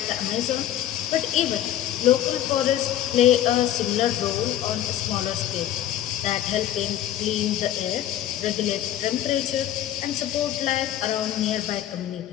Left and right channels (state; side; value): quieter; right; 11.9 dB